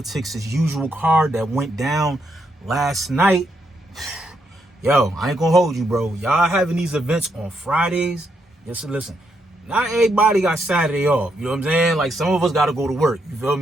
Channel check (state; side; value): normal; both; correlation 0.78